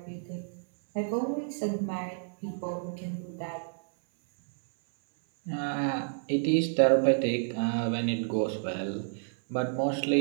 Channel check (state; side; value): silent; left; 58 dB below the other